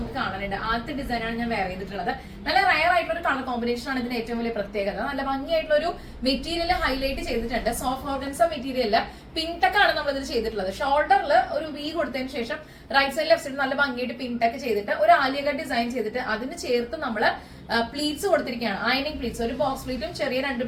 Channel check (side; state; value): both; identical; correlation 1.00